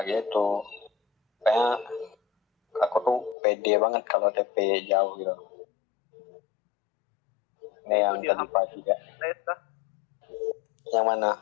gitu. Kayak aku tuh pede banget kalau TP jauh gitu. Ini yang Itu dia tadi pagi ya. TS dah. Yang mana?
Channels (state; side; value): drops out; right; at 3.4 s